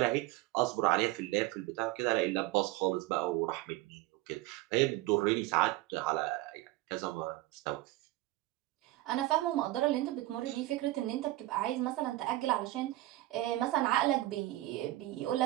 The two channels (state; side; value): quieter; left; 17.6 dB